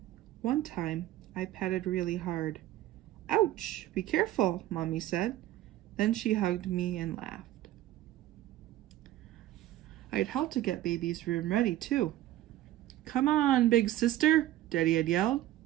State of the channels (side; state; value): left; quieter; 14.1 dB